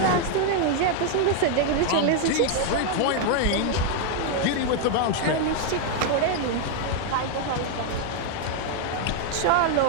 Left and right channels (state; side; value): different; both; correlation 0.00